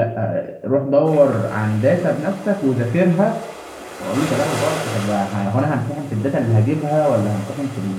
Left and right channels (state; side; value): identical; both; correlation 1.00